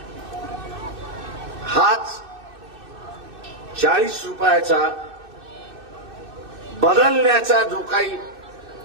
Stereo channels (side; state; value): left; late; 2.6 ms